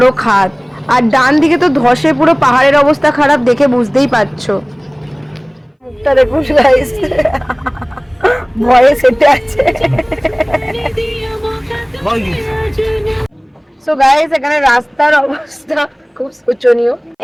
খাদ, আর ডান দিকে তো ধসে পুরো পাহাড়ের অবস্থা খারাপ, দেখে বুঝতেই পারছো। মুখটা দেখুন গাইস, ভয়ে সেটে আছে। সো গাইস এখানে রাস্তার অবস্থা খুব শোচনীয়।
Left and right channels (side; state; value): both; identical; correlation 1.00